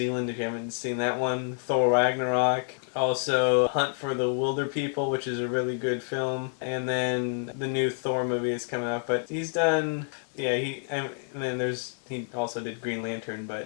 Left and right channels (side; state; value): right; silent; 59 dB below the other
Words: if you haven't seen that one. Thor Ragnarok. Also, Hunt for the Wilder People, which is a really good film. And then the new Thor movie is coming out. But he's done... Yeah, he also did Green Lantern,